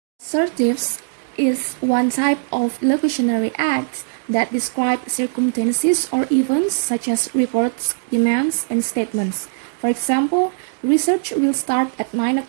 Assertives is one type of illocutionary act that describe circumstances or events such as reports, demands, and statements. For example, research will start at 9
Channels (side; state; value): left; silent; 66 dB below the other